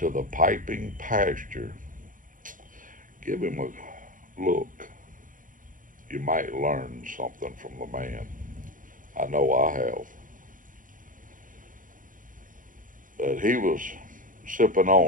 the Piping Pasture, give him a look. You might learn something from the man. I know I have. But he was sipping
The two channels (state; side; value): late; left; 0.39 ms